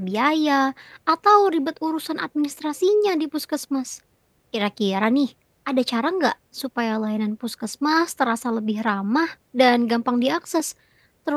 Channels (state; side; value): identical; both; correlation 1.00